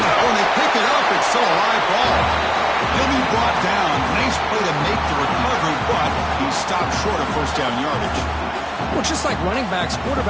they pick it up, it's still a live ball. He'll be brought down. Nice play to make the recovery, but he stopped short of 1st down yardage. Well, just like running backs,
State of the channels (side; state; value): both; identical; correlation 1.00